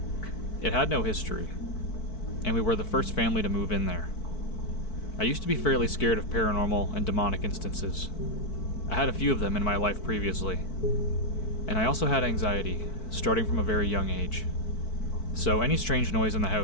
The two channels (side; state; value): right; late; 4.6 ms